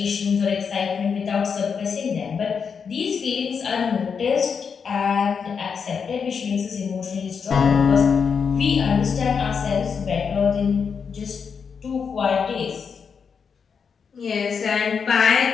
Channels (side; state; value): right; quieter; 6.2 dB